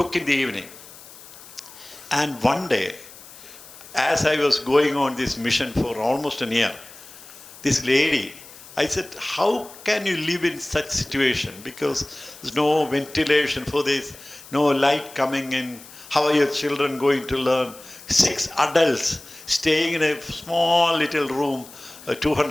in the evening. And one day, as I was going on this mission for almost a year, this lady, I said, how can you live in such situation? Because there's no ventilation for this, no light coming in. How are your children going to learn? 6 adults staying in a small little room,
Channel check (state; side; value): noise; left; hiss, 19 dB below the sound